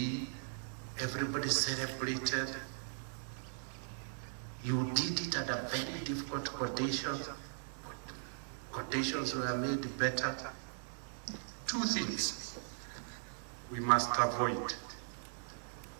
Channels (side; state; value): left; silent; digital silence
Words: everybody celebrated. You did it under very difficult conditions. Conditions were made better. Two things we must avoid: